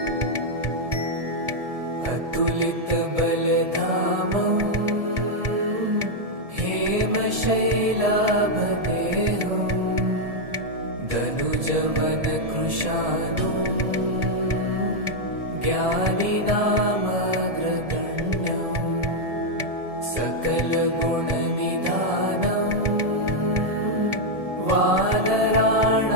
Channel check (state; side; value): late; left; 1.7 ms